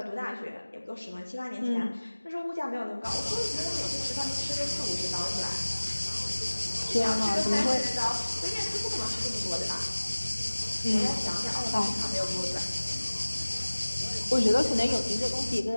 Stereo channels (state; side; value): inverted; both; correlation -1.00